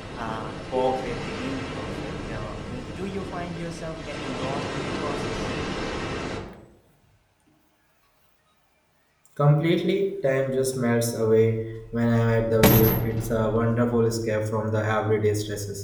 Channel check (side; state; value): both; identical; correlation 1.00